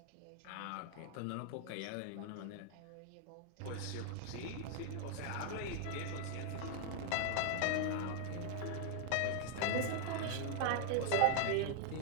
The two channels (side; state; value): both; different; correlation 0.00